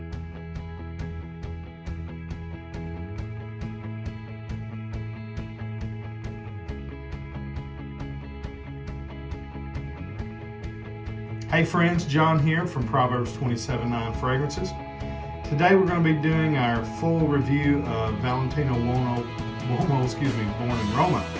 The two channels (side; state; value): both; identical; correlation 1.00